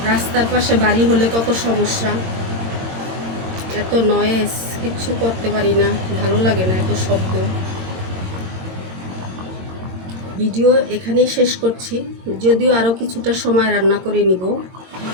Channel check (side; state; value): left; late; 22 ms